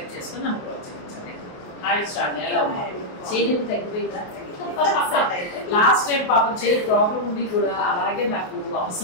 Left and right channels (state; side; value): late; right; 28 ms